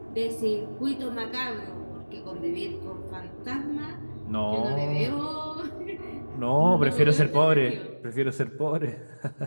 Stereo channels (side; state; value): both; inverted; correlation -1.00